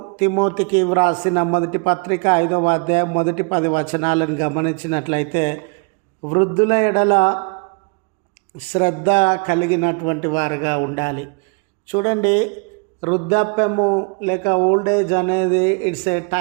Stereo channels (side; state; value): left; quieter; 36.8 dB